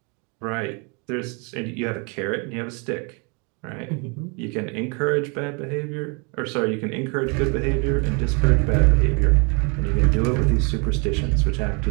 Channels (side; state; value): left; quieter; 33.4 dB